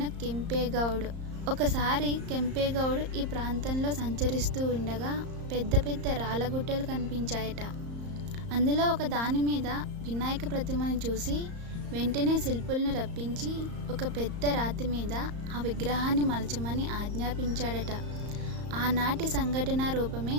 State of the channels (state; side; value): late; left; 34 ms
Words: కెంపేగౌడ్. ఒకసారి కెంపేగౌడ్ ఈ ప్రాంతంలో సంచరిస్తూ ఉండగా పెద్ద పెద్ద రాళ్ళగుట్టలు కనిపించాయట. అందులో ఒక దాని మీద వినాయక ప్రతిమను చూసి వెంటనే శిల్పులను రప్పించి ఒక పెద్ద రాతి మీద ఆ విగ్రహాన్ని మలచమని ఆజ్ఞాపించాడట. ఆనాటి సంఘటన రూపమే